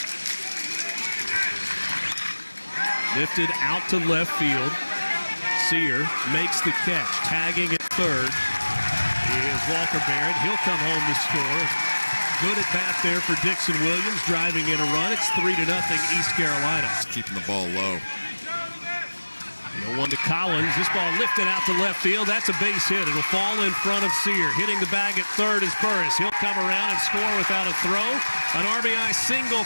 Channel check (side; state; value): both; inverted; correlation -1.00